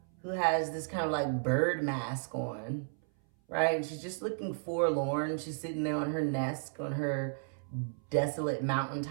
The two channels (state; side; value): silent; left; 55 dB below the other